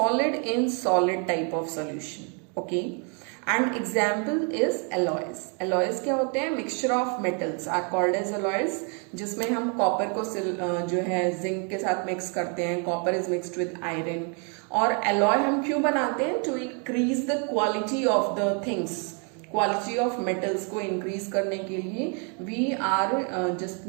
in solid type of solution. Okay, and example is alloys. Alloys क्या होते हैं? Mixture of metals are called as alloys, जिसमें हम copper को जो है zinc के साथ मिक्स करते हैं. Copper is mixed with iron. और alloy हम क्यों बनाते हैं? To increase the quality of the things, quality of metals को इंक्रीज करने के लिए we are just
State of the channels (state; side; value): quieter; left; 38.3 dB